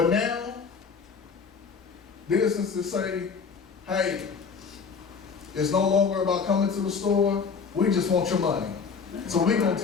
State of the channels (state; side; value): quieter; right; 5.6 dB